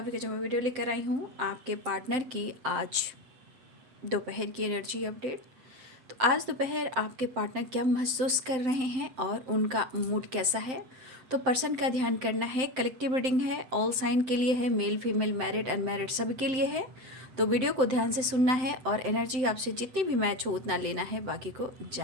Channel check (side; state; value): left; late; 7.7 ms